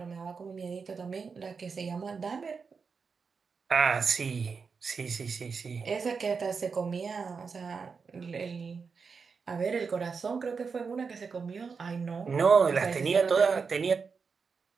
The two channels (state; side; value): quieter; left; 5.3 dB